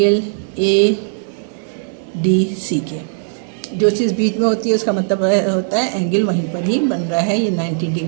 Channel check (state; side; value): silent; left; digital silence